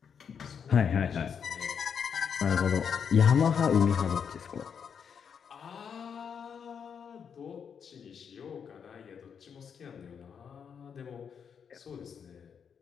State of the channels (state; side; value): quieter; right; 7.1 dB